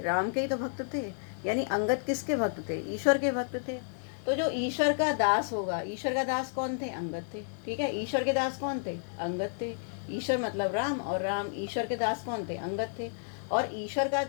राम के ही तो भक्त थे। यानी अंगद किसके भक्त थे, ईश्वर के भक्त थे। तो जो ईश्वर का दास होगा, ईश्वर का दास कौन थे, अंगद थे, ठीक है। ईश्वर के दास कौन थे, अंगद थे। ईश्वर मतलब राम, और राम ईश्वर के दास कौन थे, अंगद थे। और ईश्वर का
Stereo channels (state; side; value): silent; right; digital silence